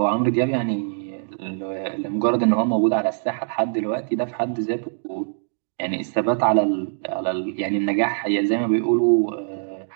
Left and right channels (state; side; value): silent; left; digital silence